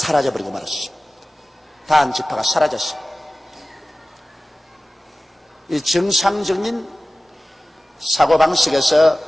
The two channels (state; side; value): normal; both; correlation 0.96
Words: 말았습니다. 단 지파가 사라졌습니다. 이 정상적인 사고방식에서